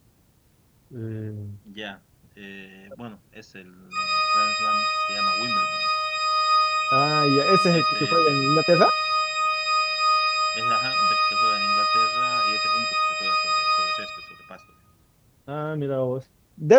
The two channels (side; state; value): both; identical; correlation 1.00